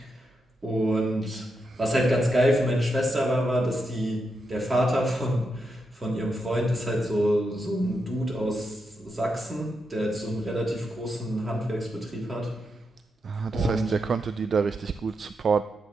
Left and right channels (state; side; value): normal; both; correlation 0.85